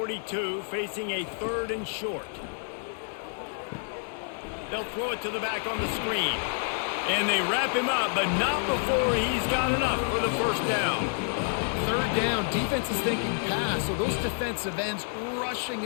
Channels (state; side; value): silent; right; 59 dB below the other